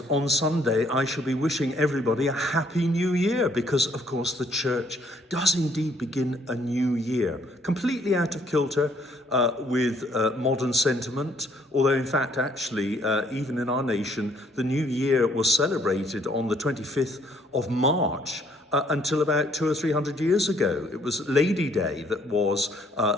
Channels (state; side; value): normal; both; correlation 0.65